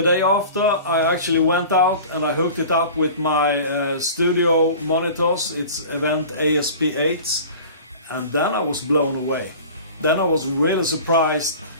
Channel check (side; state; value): both; inverted; correlation -0.40